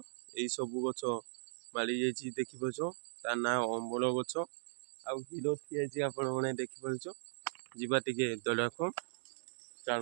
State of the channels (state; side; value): silent; left; digital silence